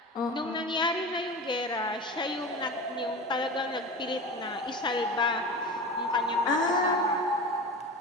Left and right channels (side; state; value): both; normal; correlation 0.30